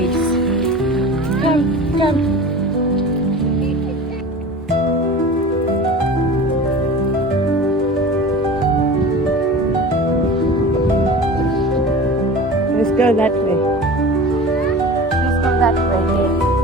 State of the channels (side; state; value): both; normal; correlation 0.36